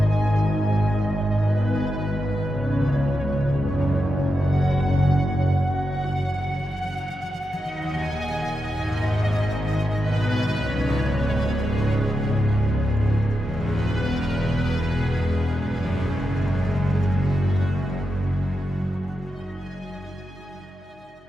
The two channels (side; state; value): both; normal; correlation 0.88